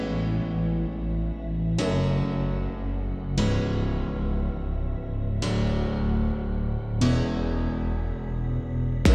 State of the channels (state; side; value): identical; both; correlation 1.00